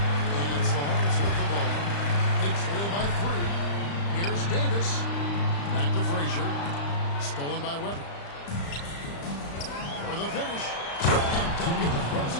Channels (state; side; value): late; right; 35 ms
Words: it's the Hornets with the ball. They trail by 3. Here's Davis. Back to Frazier. Stolen by Webber. For the finish. And Duncan throws